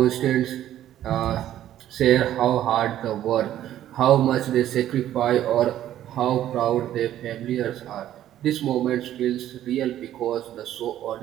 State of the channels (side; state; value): left; quieter; 12.2 dB